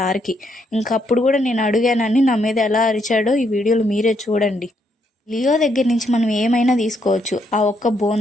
ఇంకప్పుడు కూడా నేను అడిగానని నా మీద ఎలా అరిచాడో ఈ వీడియోలో మీరే చూడండి. లియో దగ్గర నుంచి మనం ఏమైనా తీసుకోవచ్చు. ఆ ఒక్క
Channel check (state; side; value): normal; both; correlation 0.75